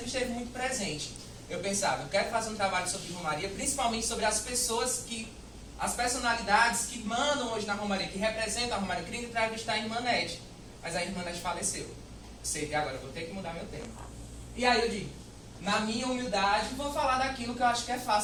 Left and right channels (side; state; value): both; identical; correlation 1.00